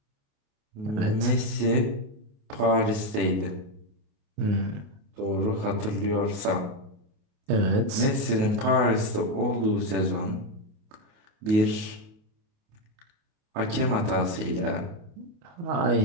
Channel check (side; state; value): left; late; 28 ms